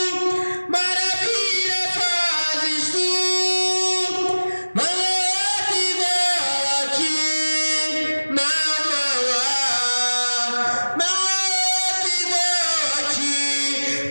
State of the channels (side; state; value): both; inverted; correlation -1.00